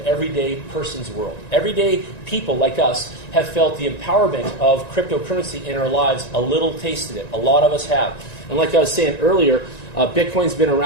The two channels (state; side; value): late; right; 1.9 ms